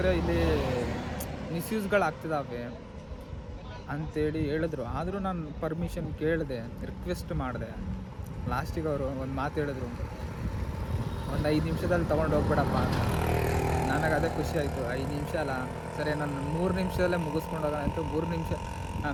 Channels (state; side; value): identical; both; correlation 1.00